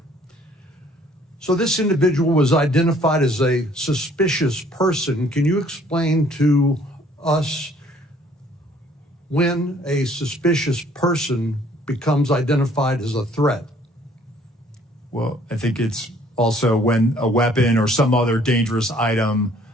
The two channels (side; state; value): both; normal; correlation 0.60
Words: So this individual was identified as a suspicious person. Can you explain to us when a suspicious person becomes identified as a threat? Well, I think it's also when a weapon or some other dangerous item